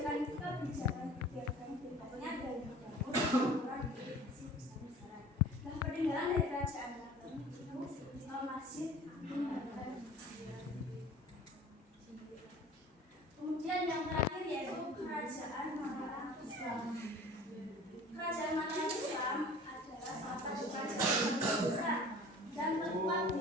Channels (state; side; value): normal; both; correlation 0.44